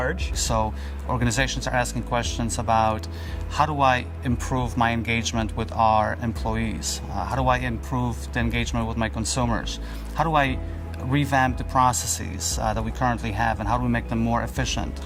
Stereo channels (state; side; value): identical; both; correlation 1.00